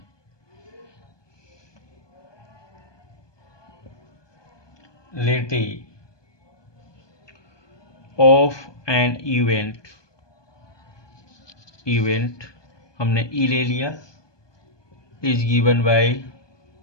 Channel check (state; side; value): late; right; 1.2 ms